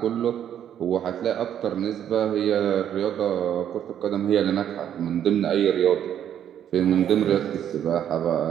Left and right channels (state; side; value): quieter; left; 9.9 dB